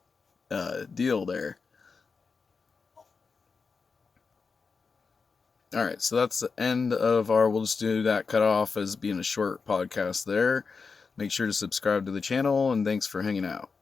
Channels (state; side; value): quieter; right; 4.9 dB